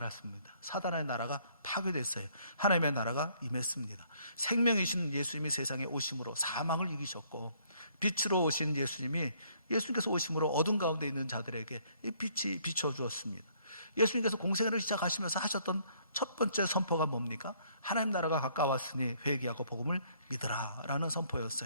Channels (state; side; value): inverted; both; correlation -0.64